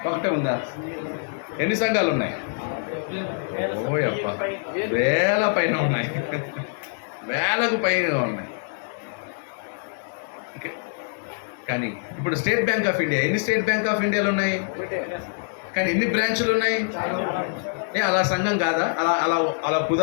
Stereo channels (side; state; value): right; silent; digital silence